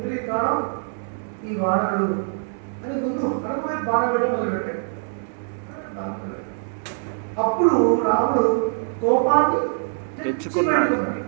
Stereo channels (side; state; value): left; silent; 63 dB below the other